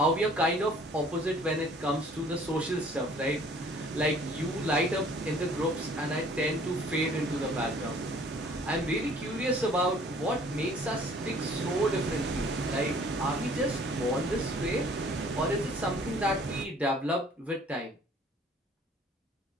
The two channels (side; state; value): both; normal; correlation 0.55